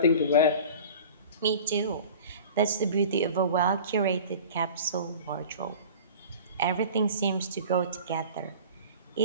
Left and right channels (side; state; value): both; inverted; correlation -0.40